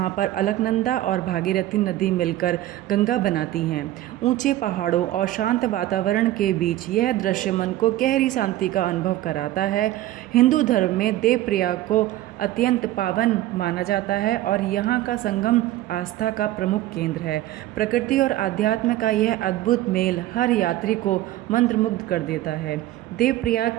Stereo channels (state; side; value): quieter; left; 14.8 dB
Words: पर अलकनंदा और भागीरथी नदी मिलकर गंगा बनाती हैं। ऊंचे पहाड़ों और शांत वातावरण के बीच यह दृश्य मन को गहरी शांति का अनुभव कराता है। हिंदू धर्म में देवप्रयाग को अत्यंत पावन माना जाता है और यहाँ का संगम आस्था का प्रमुख केंद्र है। प्रकृति और आध्यात्म का यह अद्भुत मेल हर यात्री को मंत्रमुग्ध कर देता है। देवप्रयाग